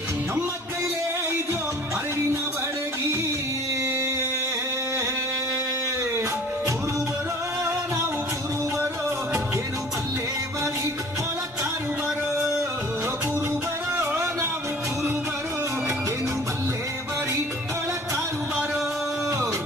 ನಮ್ಮ ಕೈಲೇ ಇದೋ ಅರಿವಿನ ಬಡಗಿ ಕುರುಬರೋ ನಾವು ಕುರುಬರೋ ಏನು ಬಲ್ಲೆ ಬರಿ ಒಳಕಾರು ಬರೋ ಕುರುಬರೋ ನಾವು ಕುರುಬರೋ ಏನು ಬಲ್ಲೆ ಬರಿ ಒಳಕಾರು ಬರೋ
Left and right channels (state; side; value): normal; both; correlation 0.48